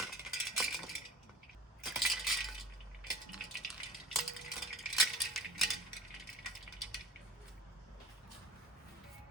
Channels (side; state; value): both; normal; correlation 0.40